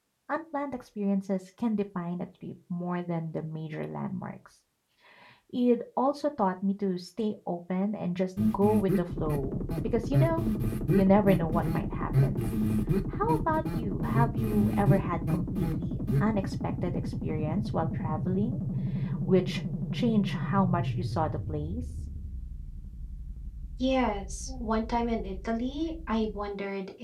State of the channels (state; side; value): identical; both; correlation 1.00